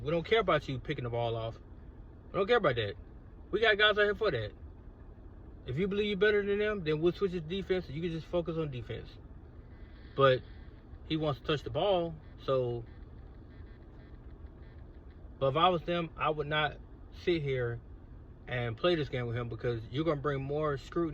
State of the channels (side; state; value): both; identical; correlation 1.00